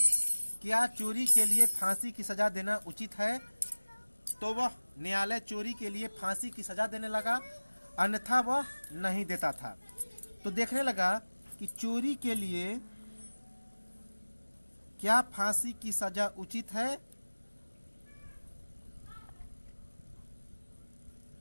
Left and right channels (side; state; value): both; inverted; correlation -1.00